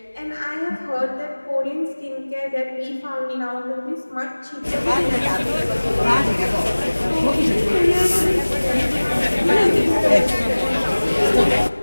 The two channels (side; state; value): both; inverted; correlation -1.00